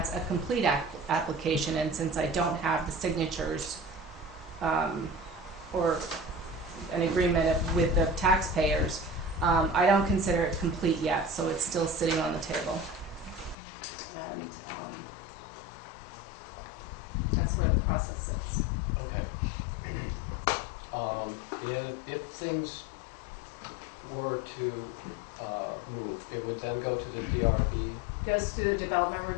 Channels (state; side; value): drops out; right; at 13.6 s